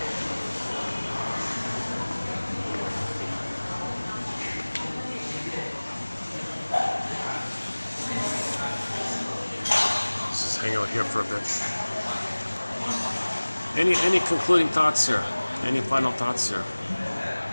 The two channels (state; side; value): inverted; both; correlation -1.00